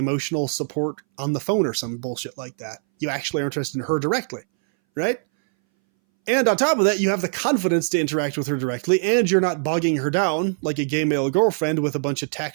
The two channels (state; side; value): silent; left; 62 dB below the other